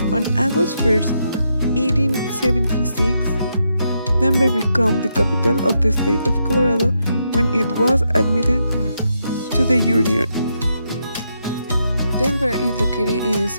On August 1st, 1876, Denver became the capital of the state of Colorado when it was admitted to the Union. Denver is located in the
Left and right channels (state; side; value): inverted; both; correlation -0.81